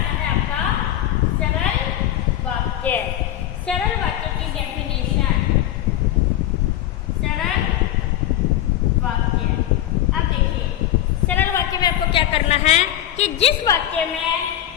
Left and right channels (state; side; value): quieter; right; 12.5 dB